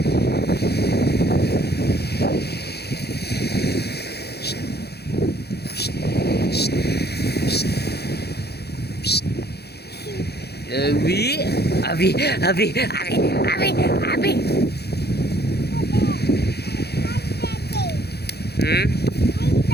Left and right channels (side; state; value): right; late; 0.47 ms